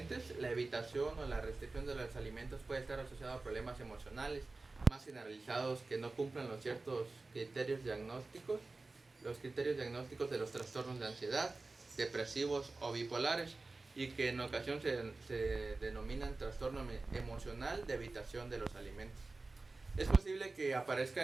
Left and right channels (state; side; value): quieter; left; 3.4 dB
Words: la evitación o la restricción de los alimentos puede estar asociada a problemas emocionales más generalizados que no cumplan los ciertos criterios diagnósticos, los criterios diagnósticos de los trastornos de ansiedad, depresivos o bipolares, y que en ocasión se denominan trastorno emocional de evitación de los alimentos. Es posible que aparezca